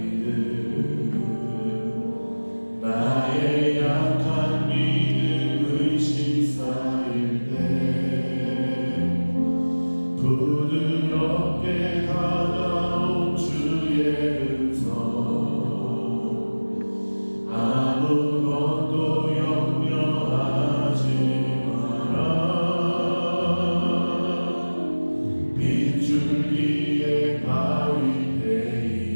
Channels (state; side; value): inverted; both; correlation -1.00